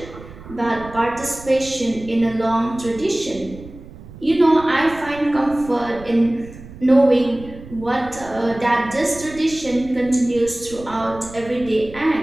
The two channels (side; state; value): right; noise; rumble, 17 dB below the sound